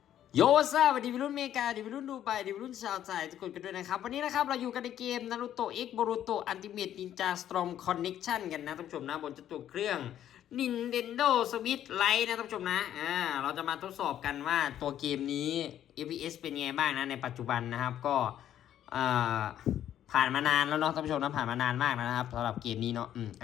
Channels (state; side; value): quieter; right; 11.0 dB